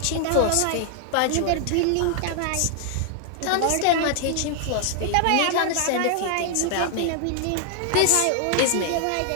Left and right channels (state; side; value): different; both; correlation 0.00